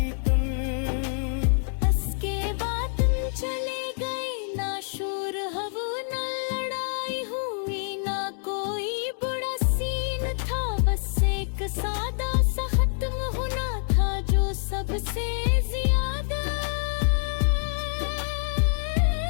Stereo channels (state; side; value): silent; right; digital silence